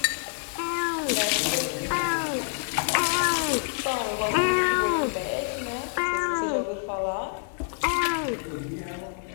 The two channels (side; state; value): right; silent; 60 dB below the other